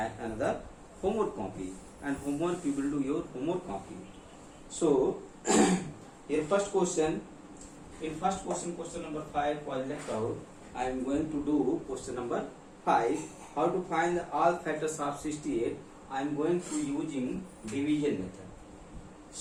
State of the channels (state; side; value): identical; both; correlation 1.00